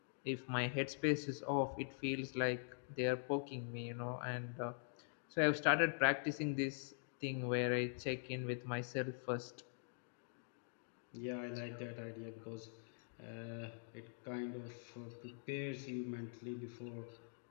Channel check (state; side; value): silent; right; digital silence